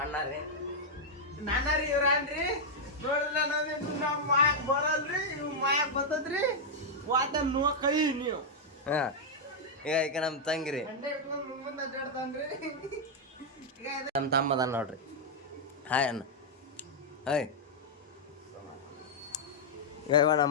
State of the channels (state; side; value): normal; both; correlation -0.04